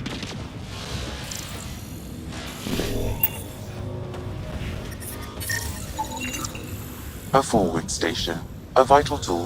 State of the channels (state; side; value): identical; both; correlation 1.00